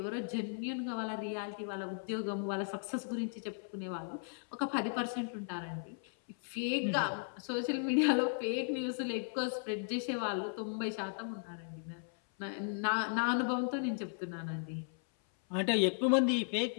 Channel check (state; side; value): silent; right; 54 dB below the other